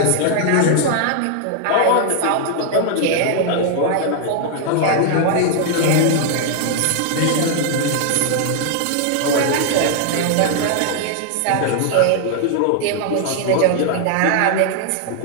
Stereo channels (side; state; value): both; different; correlation 0.00